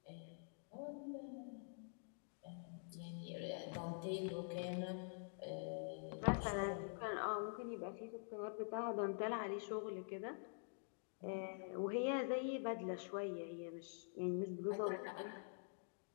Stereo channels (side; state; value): right; silent; digital silence